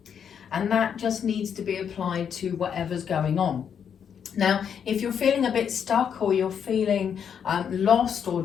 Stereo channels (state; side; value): quieter; right; 7.8 dB